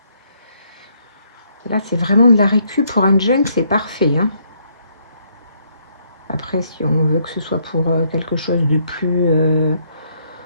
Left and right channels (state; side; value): inverted; both; correlation -0.71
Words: Là, c'est vraiment de la récup pour un junk, c'est parfait. Hein. Après, si on veut que ce soit pour quelque chose de plus...